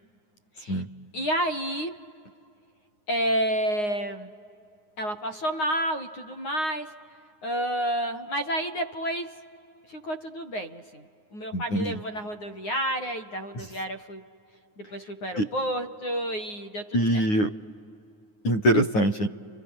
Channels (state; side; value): late; right; 9.6 ms